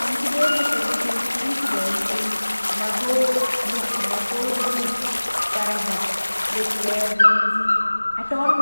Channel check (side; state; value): both; inverted; correlation -1.00